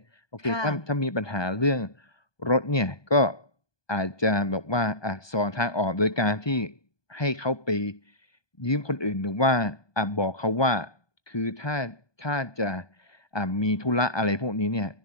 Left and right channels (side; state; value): right; late; 1.2 ms